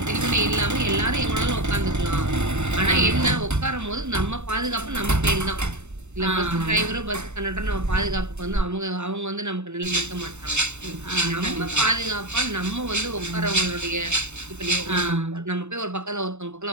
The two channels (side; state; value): left; late; 0.82 ms